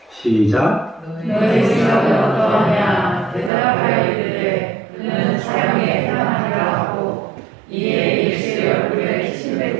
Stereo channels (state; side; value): drops out; left; at 3.5 s